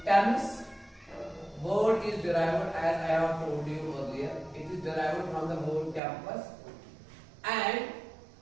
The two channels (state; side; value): drops out; left; at 6.0 s